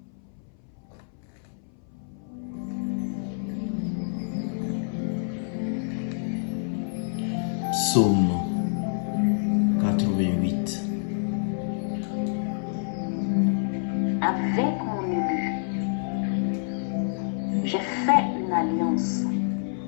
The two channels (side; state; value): right; silent; 58 dB below the other